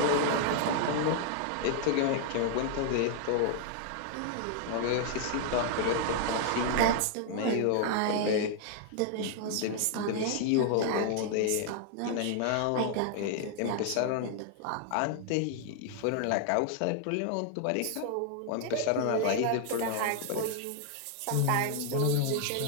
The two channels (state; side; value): different; both; correlation 0.00